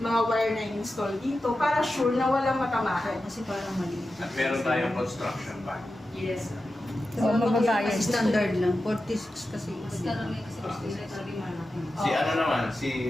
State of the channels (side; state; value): both; normal; correlation 0.92